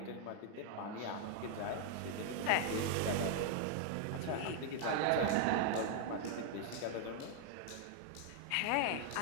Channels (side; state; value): both; different; correlation 0.00